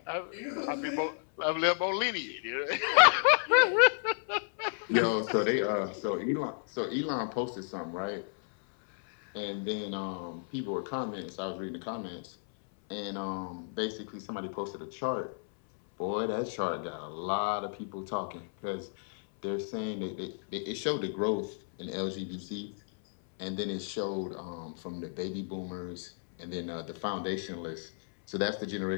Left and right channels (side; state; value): right; silent; 56 dB below the other